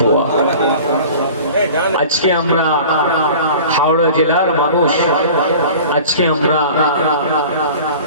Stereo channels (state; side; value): inverted; both; correlation -0.41